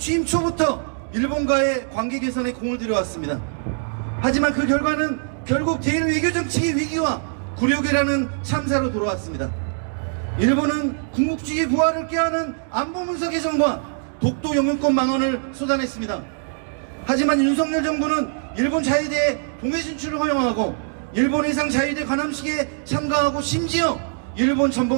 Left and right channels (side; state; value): left; silent; digital silence